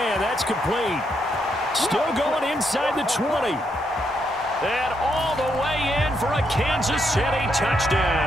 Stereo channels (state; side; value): normal; both; correlation 0.78